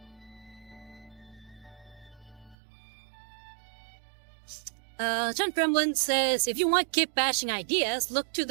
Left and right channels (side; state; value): left; drops out; at 2.6 s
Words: John Gremlin says, if you want kit bashing ideas, look to